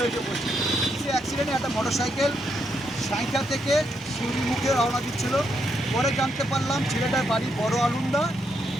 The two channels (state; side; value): normal; both; correlation 0.78